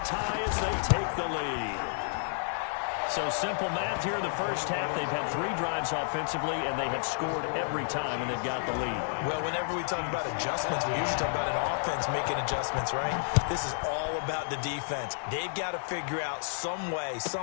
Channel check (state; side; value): silent; right; 57 dB below the other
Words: tie as they take the lead. So simple math here in the first half. They've had 3 drives offensively, and they have scored every time, and they've got the lead. Well, whenever we talk about adjustments, we usually talk about an offense making adjustments, right? This is all about the defense. They've got to figure out some way,